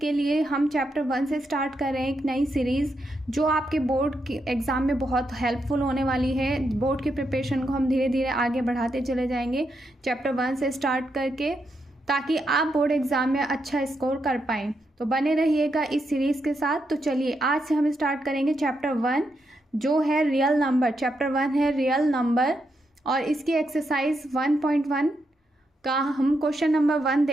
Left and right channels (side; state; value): both; normal; correlation 0.82